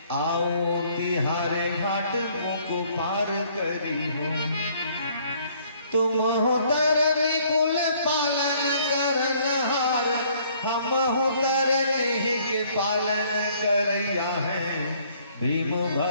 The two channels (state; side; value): inverted; both; correlation -0.62